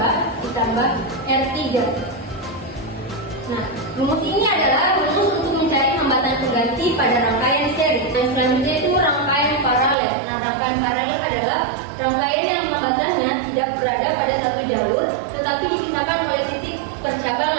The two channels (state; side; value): drops out; left; at 10.0 s